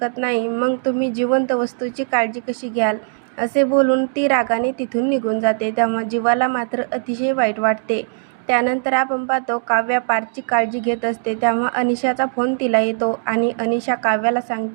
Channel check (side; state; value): left; silent; digital silence